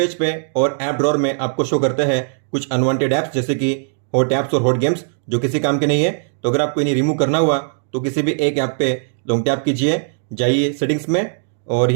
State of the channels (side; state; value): left; silent; digital silence